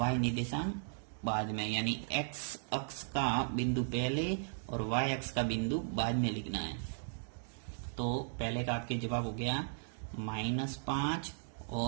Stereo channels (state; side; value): silent; left; digital silence